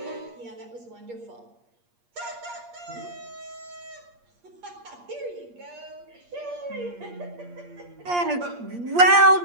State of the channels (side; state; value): left; late; 8.5 ms